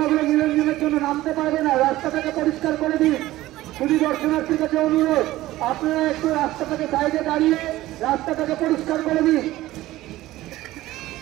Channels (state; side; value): quieter; left; 16.4 dB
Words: নিরঞ্জনের জন্য নামতে পারবে না। রাস্তাটাকে পরিষ্কার করে দিন। শুধু দর্শনার্থীর কাছে অনুরোধ, আপনারা একটু রাস্তাটাকে সাইডে দাঁড়িয়ে রাস্তাটাকে পরিষ্কার করে দিন।